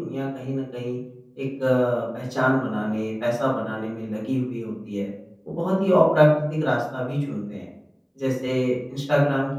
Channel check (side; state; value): both; identical; correlation 1.00